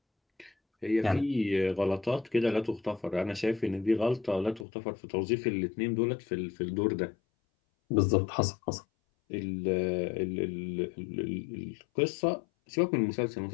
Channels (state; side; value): drops out; right; at 4.7 s